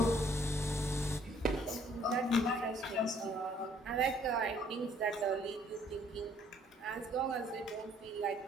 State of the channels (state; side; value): normal; both; correlation 0.62